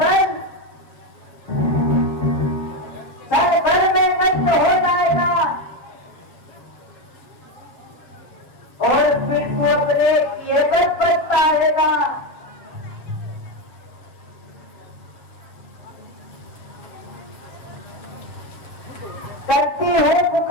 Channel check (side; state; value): right; late; 7.1 ms